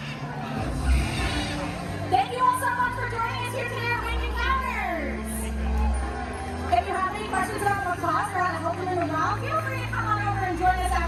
Thank you all so much for joining us here today at Wing Encounters. If you have any questions about macaws or how to help them in the wild, feel free to come on over and join us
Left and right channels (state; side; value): identical; both; correlation 1.00